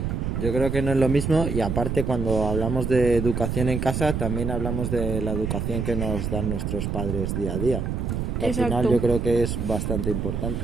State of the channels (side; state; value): right; noise; rumble, 2 dB below the sound